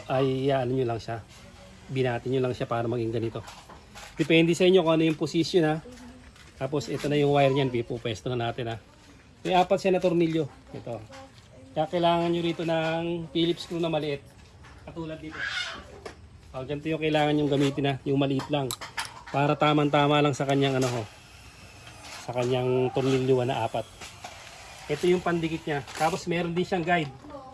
nyo lang siya. Binatin nyo lang siya para maging ganito. Depende sa inyo kung ano yung position ha. Tapos ito na yung wire niyan, pupwesto na natin ha. May 4 siya na tornilyo. Ito. Kaya kailangan nyo rito ng Phillips screw na maliit. Katulad dito. Ganito yung kailangan yung gamitin na, yung maliit lang. Para tamang-tama lang sa kanyang ano ho. Sa kanyang tornilyo na 4. Ito yung pandikit niya. Tapos meron din siyang guide.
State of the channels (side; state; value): both; identical; correlation 1.00